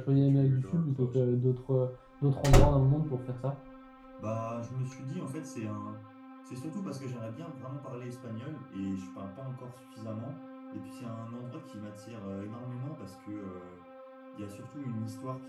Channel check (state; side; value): identical; both; correlation 1.00